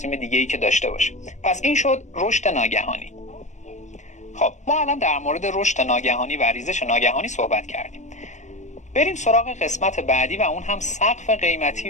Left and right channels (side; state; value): right; late; 0.34 ms